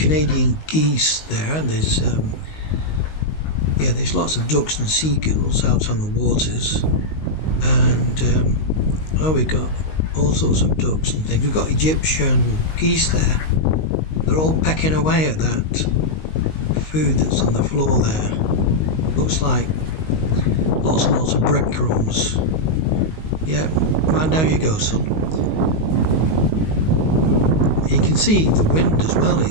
geese there, and there's lots of ducks and seagulls out on the waters, and we've got all sorts of ducks and things. We've got Egyptian geese there. They're all pecking away at that food that's on the floor there. Looks like lots and lots of breadcrumbs. Yeah, right, there you go, son. You can see the wind as well,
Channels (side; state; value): right; late; 19 ms